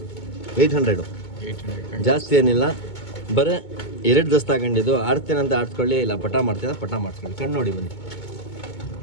800. ಜಾಸ್ತಿ ಏನಿಲ್ಲ, ಬರೀ 2 ದಸ್ತ ತಗೊಂಡಿದ್ದು. ಆಡ್ತೇನಂತ ಆಡ್ಸ್ಕೊಳ್ಳಿ, ಇಲ್ಲ ಪಟ ಮಾಡ್ತೀರ ಪಟ ಮಾಡಿಸ್ಕೊಳ್ಳಿ. ಕಣ್ಣು ನೋಡಿ ಬನ್ನಿ.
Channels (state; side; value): late; right; 2.2 ms